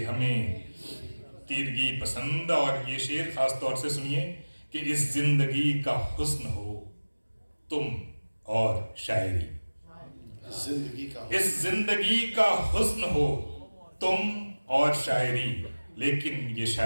हमें तीरगी पसंद। और ये शेर खास तौर से सुनिए कि इस जिंदगी का हुस्न हो तुम और शायरी, इस जिंदगी का हुस्न हो तुम और शायरी, लेकिन ये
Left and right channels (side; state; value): both; inverted; correlation -1.00